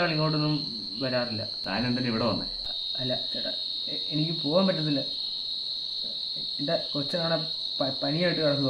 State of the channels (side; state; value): both; identical; correlation 1.00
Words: ആൾ ഇങ്ങോട്ടൊന്നും വരാറില്ല. താൻ എന്തിനാ ഇവിടെ വന്നേ? അല്ല ചേട്ടാ, എനിക്ക് പോകാൻ പറ്റത്തില്ല. എൻ്റെ കൊച്ചനാണെ പനിയായിട്ട്